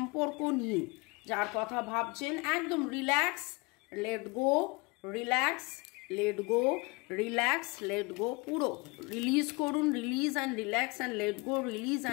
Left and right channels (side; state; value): right; quieter; 27.2 dB